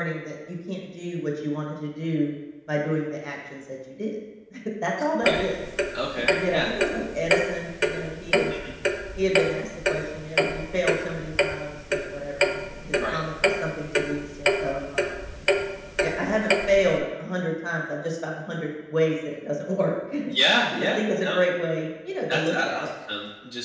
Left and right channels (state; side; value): identical; both; correlation 1.00